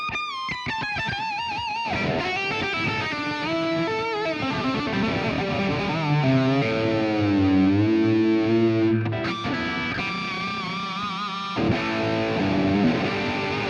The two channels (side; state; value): both; identical; correlation 1.00